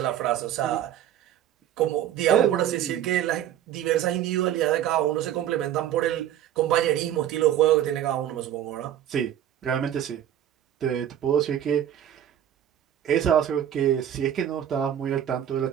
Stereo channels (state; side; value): quieter; left; 10.8 dB